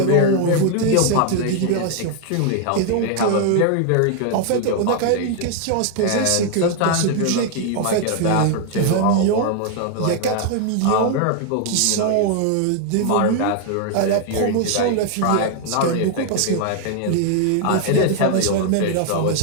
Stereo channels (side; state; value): both; different; correlation 0.00